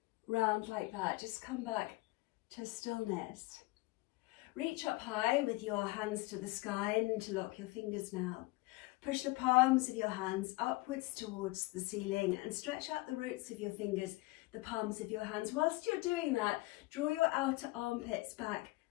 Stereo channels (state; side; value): quieter; right; 21.5 dB